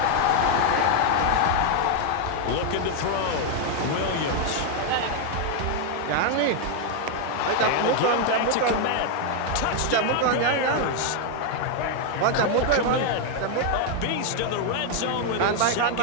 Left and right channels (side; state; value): both; different; correlation 0.00